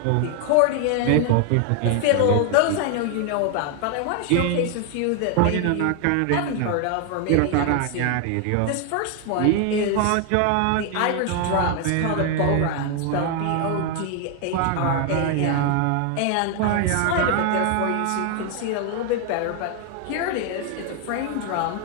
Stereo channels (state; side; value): different; both; correlation 0.01